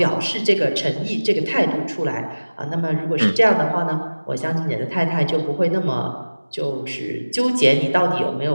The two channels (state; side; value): inverted; both; correlation -1.00